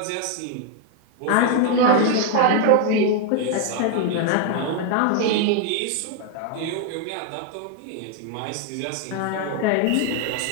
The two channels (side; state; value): both; different; correlation 0.01